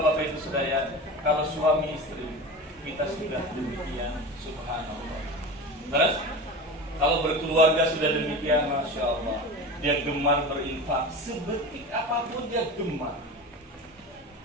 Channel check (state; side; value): normal; both; correlation 0.30